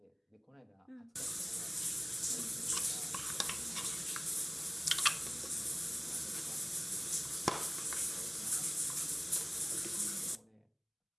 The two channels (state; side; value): identical; both; correlation 1.00